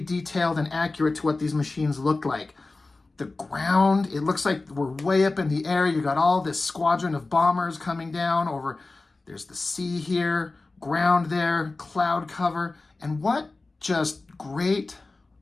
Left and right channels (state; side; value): quieter; right; 3.4 dB